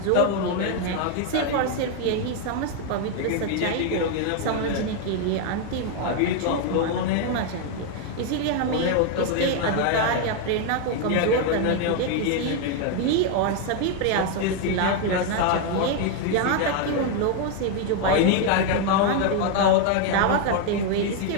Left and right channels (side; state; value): both; different; correlation 0.01